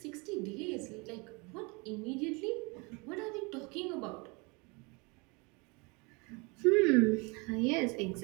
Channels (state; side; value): quieter; left; 28.8 dB